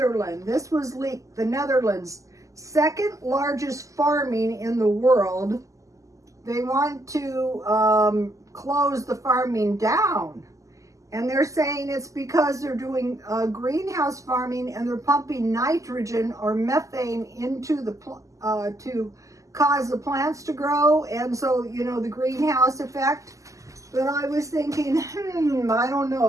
This was leaked. The Netherlands, 2nd largest farming in the world. They want to close the farming down. And they're saying it's because they're doing greenhouse farming and they're pumping nitrogen or methane into the to cause the plants to grow. And so, you know, the greenhouse effect. But I was thinking, I don't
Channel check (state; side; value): late; left; 0.16 ms